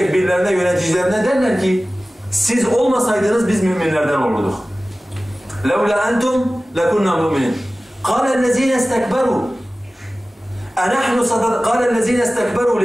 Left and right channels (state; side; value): normal; both; correlation 0.97